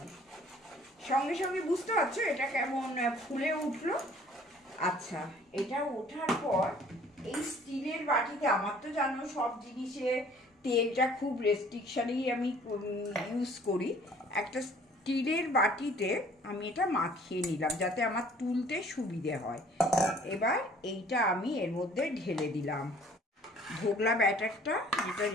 সঙ্গে সঙ্গে বুঝতে পারছো এটা কেমন ফুলে উঠলো। আচ্ছা, এটা ওঠার পর এই স্টিলের বাটিতে, আমার তো জানো সব জিনিসে তেলটা খুব রেস্ট্রিকশনেই আমি ইউজ করি, একটা স্টিলের বাটিতে আমি এটা মাখিয়ে নিলাম যাতে আমার তুলতে সুবিধে হয়। এবার এইটা আমি এর মধ্যে ঢেলে দিলাম, ধোকলা ব্যাটারটা যেটা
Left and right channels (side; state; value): both; normal; correlation 0.55